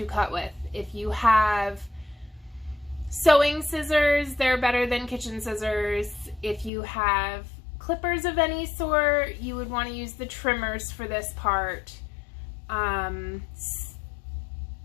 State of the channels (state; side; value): drops out; right; at 6.7 s